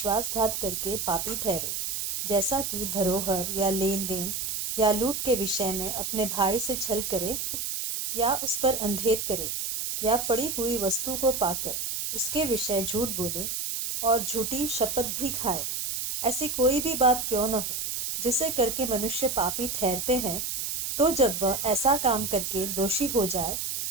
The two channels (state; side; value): noise; right; hiss, 2 dB below the sound